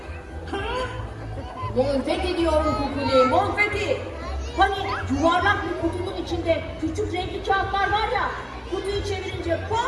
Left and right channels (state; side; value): identical; both; correlation 1.00